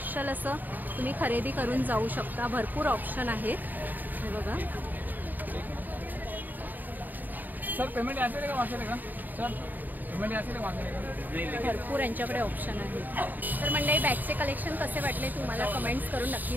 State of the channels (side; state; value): left; late; 0.087 ms